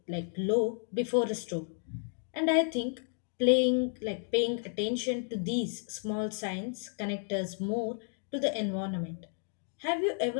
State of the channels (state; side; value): silent; right; 56 dB below the other